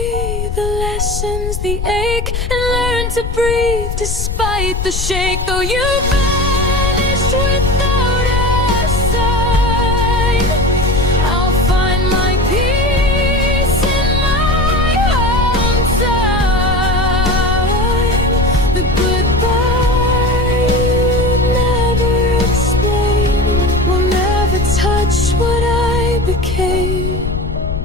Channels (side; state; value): left; noise; rumble, 3 dB below the sound